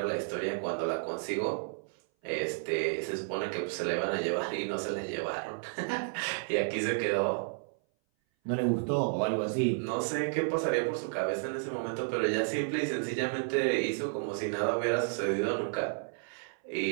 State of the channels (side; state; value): left; silent; 56 dB below the other